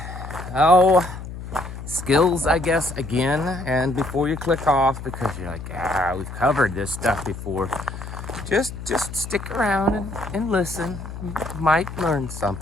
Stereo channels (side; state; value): left; noise; hum, 10 dB below the sound